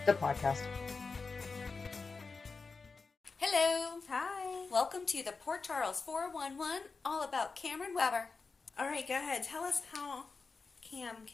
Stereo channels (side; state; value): right; quieter; 4.4 dB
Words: the podcast. Hello. Hi. Welcome to the Port Charles 411, all about Cameron Weber. All right, go ahead. Tell us how Cam